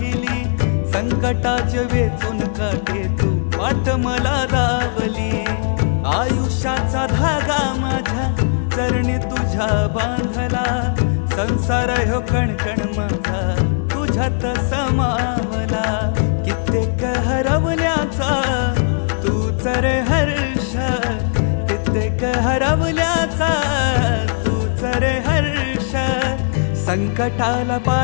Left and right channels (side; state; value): right; silent; 66 dB below the other